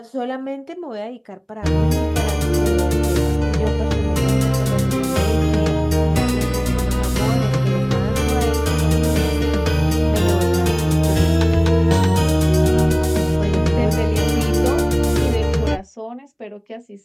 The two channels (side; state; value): both; identical; correlation 1.00